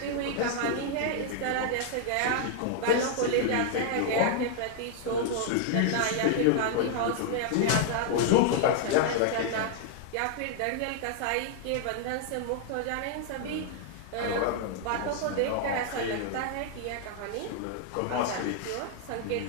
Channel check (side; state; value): both; different; correlation 0.00